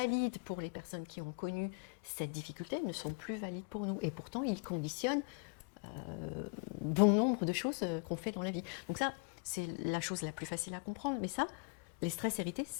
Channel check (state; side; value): quieter; right; 38.6 dB